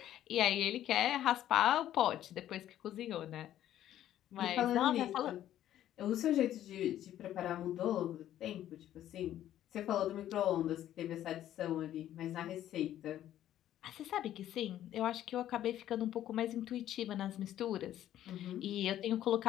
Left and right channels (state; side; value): quieter; right; 12.1 dB